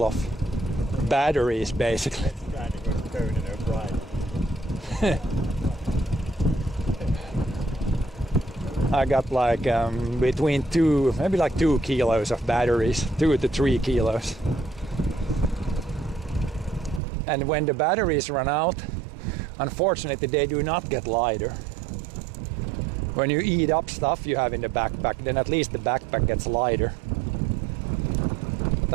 of batteries basically. I got like between maybe like 2 kilos of batteries, 2 to 3 kilos. And when the batteries run out, unfortunately they do not get lighter. When you eat up stuff you have in the backpack, then at least the backpack gets lighter.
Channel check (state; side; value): drops out; left; at 17.0 s